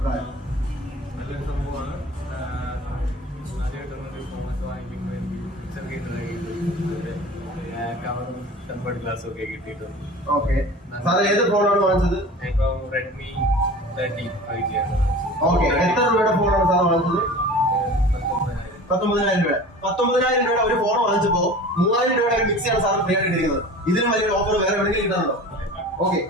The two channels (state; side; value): normal; both; correlation 0.39